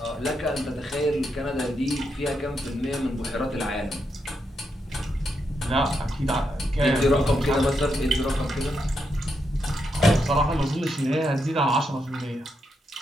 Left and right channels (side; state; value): both; normal; correlation 0.82